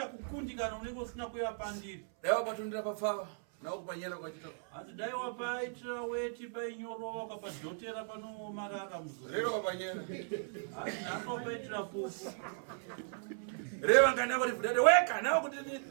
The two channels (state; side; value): silent; left; 54 dB below the other